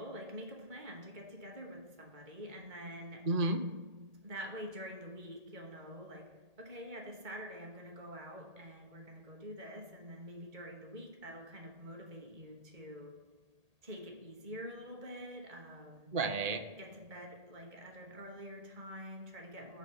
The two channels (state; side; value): late; left; 1.8 ms